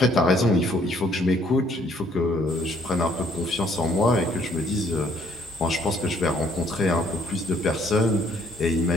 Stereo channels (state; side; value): normal; both; correlation 0.64